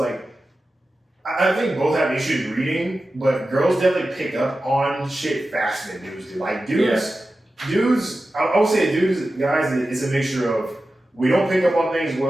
I think both have issues reading, but girls definitely pick up on shit faster than dudes do. Like dudes, I would say dudes, guys, it's a mixture of we don't pick up on things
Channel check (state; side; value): normal; both; correlation 0.93